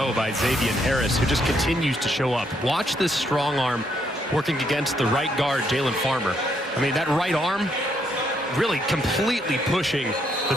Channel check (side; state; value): both; normal; correlation 0.73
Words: by Xavier Harris, who just continues to show up. Watch this strong arm working against the right guard, Jalen Farmer. I mean, that right arm really completely pushing the